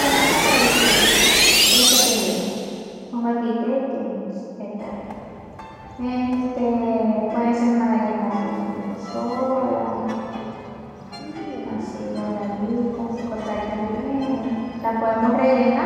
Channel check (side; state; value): both; identical; correlation 1.00